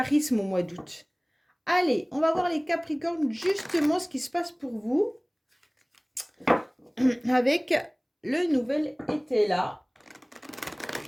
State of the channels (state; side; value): identical; both; correlation 1.00